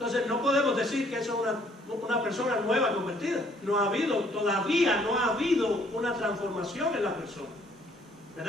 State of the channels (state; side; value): normal; both; correlation 0.63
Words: no podemos decir que eso es una persona nueva convertida. No ha habido, todavía no ha habido una transformación en la persona,